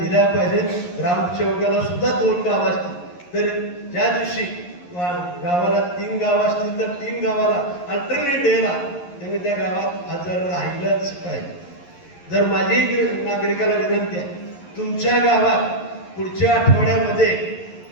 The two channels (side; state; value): right; late; 11 ms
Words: पाहिजेत. ग्रामसेवकाला सुद्धा 2 गाव असतील तर ज्या दिवशी गावाला 3 गावं असतील तर 3 गावाला अल्टरनेट डेला त्यांनी त्या गावात हजर राहिलंच पाहिजे. जर माझी नागरिकाला विनंती आहे, तुमच्या गावात पुढच्या आठवड्यामध्ये